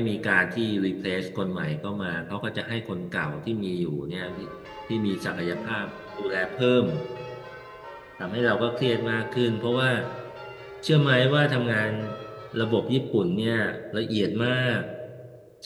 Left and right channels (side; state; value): both; identical; correlation 1.00